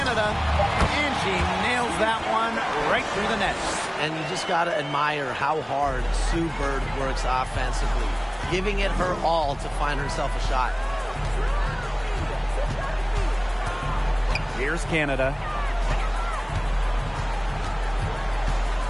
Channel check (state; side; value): identical; both; correlation 1.00